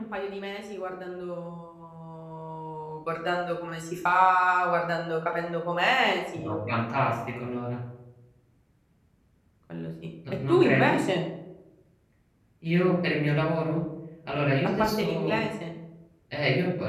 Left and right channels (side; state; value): both; identical; correlation 1.00